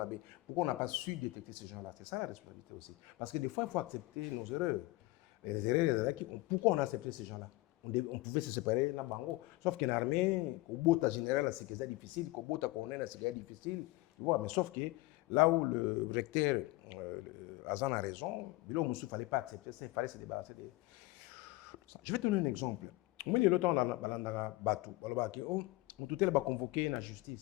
Pourquoi on n'a pas su détecter ces gens-là? C'est ça la responsabilité aussi. Parce que des fois, il faut accepter nos erreurs. Les erreurs, pourquoi on a accepté ces gens-là? On pouvait se séparer là-bas. Sauf qu'en armée, au bout de général, c'est difficile, qu'au bout de colonel, c'est difficile. Mais sauf que là où le recteur Azan a raison, il ne fallait pas accepter ça, il fallait se débarrasser de ça. Je vais te donner un exemple. Au milieu de temps, on a battu. On a convoqué la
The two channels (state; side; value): quieter; right; 20.1 dB